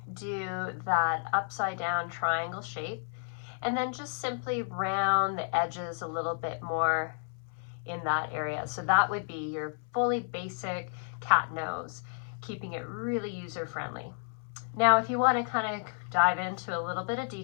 do that upside down triangle shape and then just simply round the edges a little bit more in that area. So that would be your fully basic cat nose, keeping it really user-friendly. Now, if you want to kind of dive into a little bit of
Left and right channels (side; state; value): right; silent; 57 dB below the other